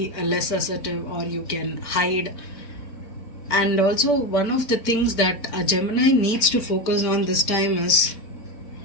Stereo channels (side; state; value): right; late; 4.4 ms